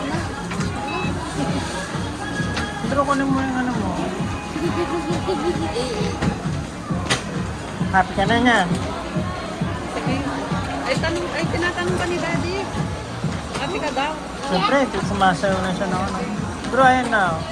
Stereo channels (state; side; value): identical; both; correlation 1.00